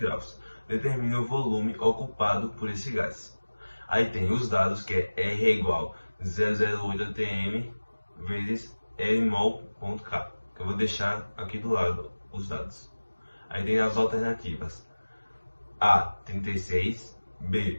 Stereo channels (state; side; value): inverted; both; correlation -1.00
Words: Determine o volume ocupado por esse gás. Aí tem os dados, que é R é igual a 0,08 atm vezes Rmol.K. Eu vou deixar aqui do lado os dados. Aí tem as alternativas: A, 36,